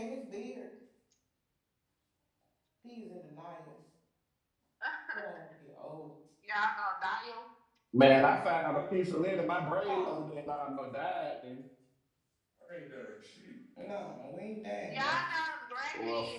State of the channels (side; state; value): both; identical; correlation 1.00